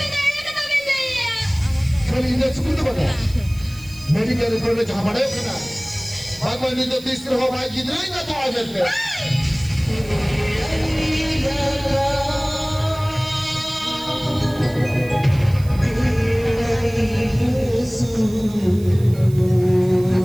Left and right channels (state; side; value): noise; right; hiss, 21 dB below the sound